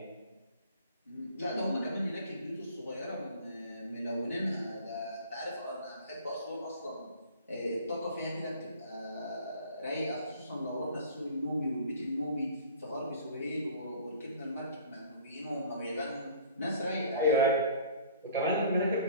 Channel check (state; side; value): inverted; both; correlation -0.48